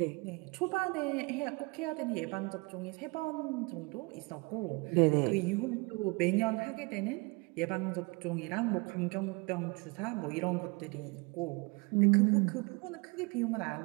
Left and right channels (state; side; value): quieter; left; 28.2 dB